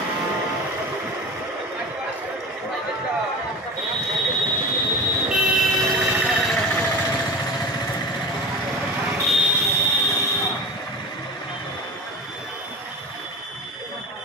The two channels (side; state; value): both; normal; correlation 0.31